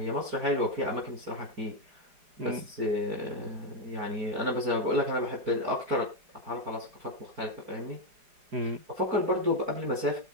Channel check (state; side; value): late; left; 4.9 ms